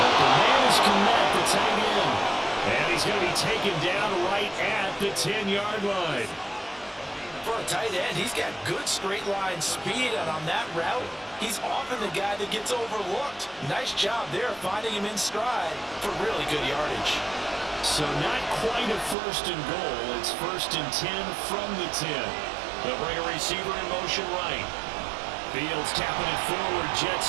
The man is Connect, the tight end. And he's going to be taken down right at the 10-yard line. For a tight end, he's got good straight line speed, and on that route, he's often the guy that gets overlooked. Nice job there finding him in stride for really good yardage. So not quite a 1st and goal. It's 1st and 10 from the 10. They'll bring a receiver in motion right. Fields tapping it forward, jet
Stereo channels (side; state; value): left; drops out; at 19.2 s